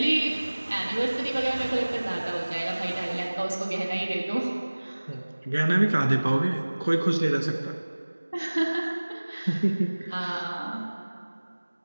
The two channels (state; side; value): inverted; both; correlation -1.00